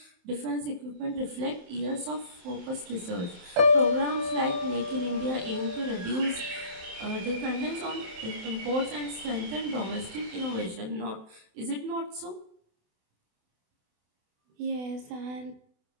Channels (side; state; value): left; late; 27 ms